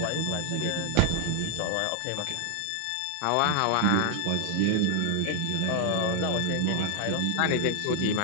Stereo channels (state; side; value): different; both; correlation 0.00